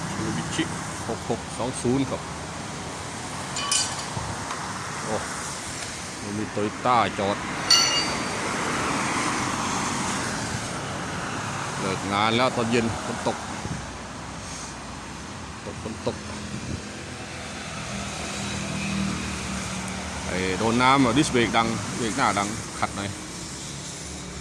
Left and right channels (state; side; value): identical; both; correlation 1.00